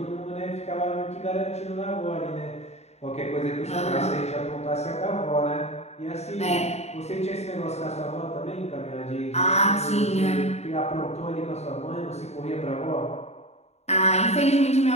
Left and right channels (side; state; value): right; late; 0.31 ms